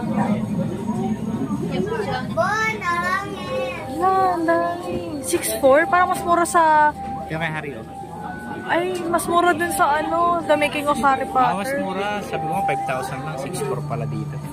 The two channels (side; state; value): both; identical; correlation 1.00